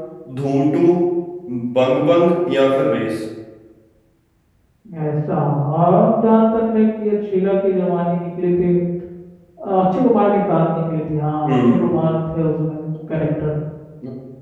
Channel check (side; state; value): both; identical; correlation 1.00